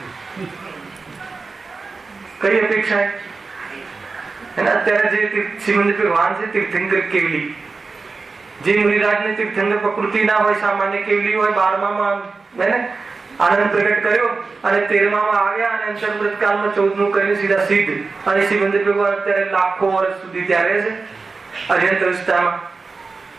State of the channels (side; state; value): left; quieter; 4.2 dB